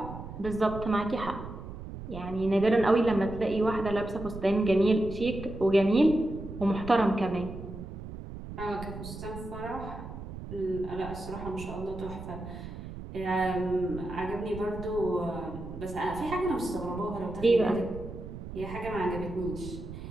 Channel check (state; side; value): noise; right; rumble, 10 dB below the sound